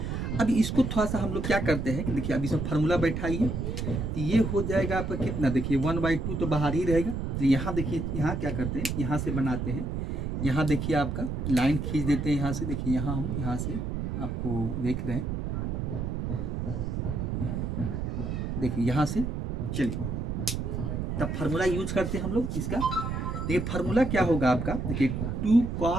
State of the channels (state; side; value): noise; right; rumble, 2 dB below the sound